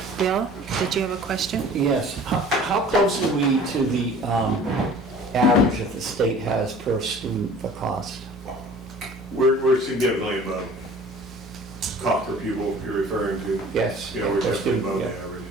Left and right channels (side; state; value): both; normal; correlation 0.46